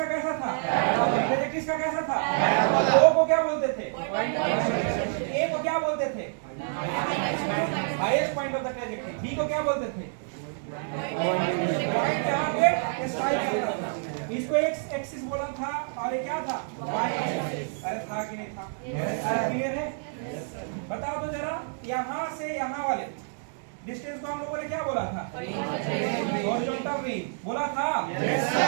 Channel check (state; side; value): silent; left; 59 dB below the other